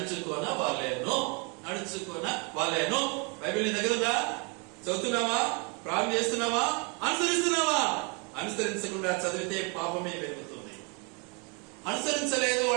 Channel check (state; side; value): quieter; left; 33.5 dB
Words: వాళ్ళేను. బైబిల్ నీ దగ్గర ఉందా? చదువుతున్నావా? ప్రారంభం చేస్తున్నావా? అనుసరిస్తున్నావా? అనుసరించకుండా చదివితే పాపమే పెరుగుతుంది. అనుసరించలేదు